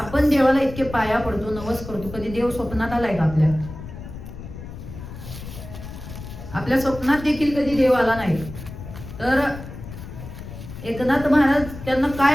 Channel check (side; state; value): left; noise; rumble, 12 dB below the sound